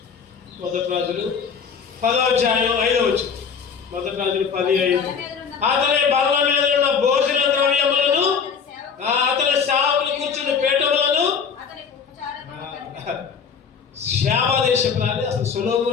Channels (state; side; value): quieter; right; 6.3 dB